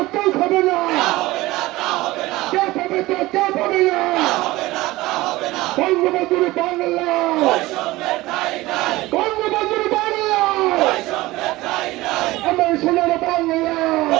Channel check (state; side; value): quieter; left; 19.0 dB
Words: কেউ খাবে না, কে পাবে তো কেউ পাবে না। বঙ্গবন্ধুর বাংলা, বঙ্গবন্ধুর বাংলা, আমার সোনার বাংলা,